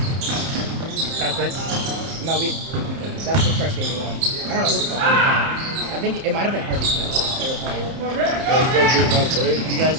right. No, that's the first game we won. I don't know who the fuck we were playing. I think it might have been Harvey Smith. They were playing. You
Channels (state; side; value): late; left; 30 ms